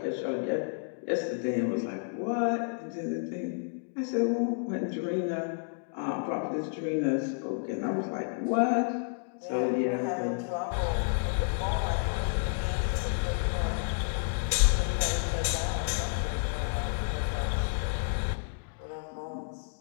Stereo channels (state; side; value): silent; right; digital silence